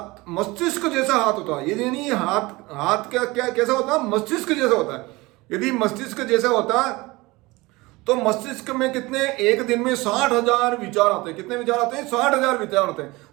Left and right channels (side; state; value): left; quieter; 22.2 dB